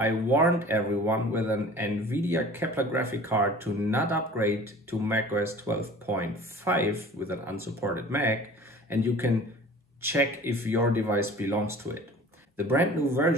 warned everyone with an NVIDIA Kepler graphic card to not upgrade to macOS 12.5 with an unsupported Mac, and you can check if your device belongs to it. The brand new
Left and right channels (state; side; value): normal; both; correlation 0.44